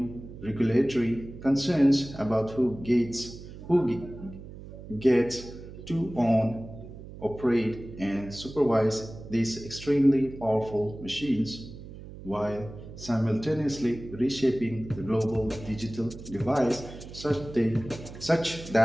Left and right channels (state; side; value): noise; right; hum, 14 dB below the sound